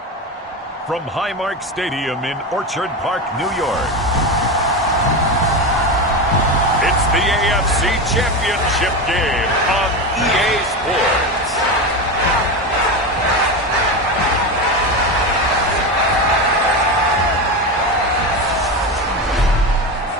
from Highmark Stadium in Orchard Park, New York, it's the AFC Championship game on EA Sports.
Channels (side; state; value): both; normal; correlation 0.19